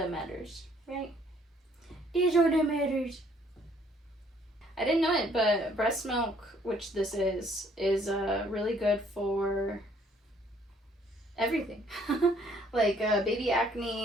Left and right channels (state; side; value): normal; both; correlation 0.63